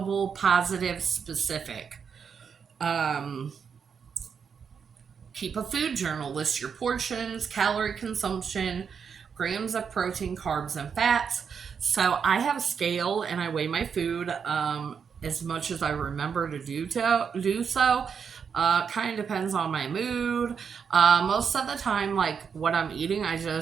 positive, specific. Keep a food journal. List your portions, calorie consumption, grams of protein, carbs, and fats. So I have a scale and I weigh my food as much as I remember to do so. Kind of depends on my mood. Most of the time, like what I'm eating, I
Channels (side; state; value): left; quieter; 6.6 dB